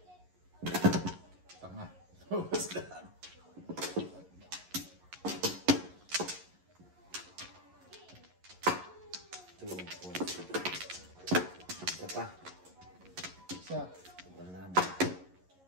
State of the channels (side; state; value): left; late; 11 ms